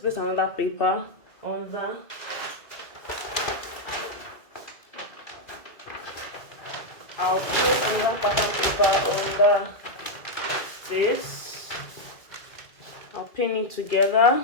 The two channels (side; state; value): right; late; 2.2 ms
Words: another paper on that. I'll place another pattern paper under this. I'll pin it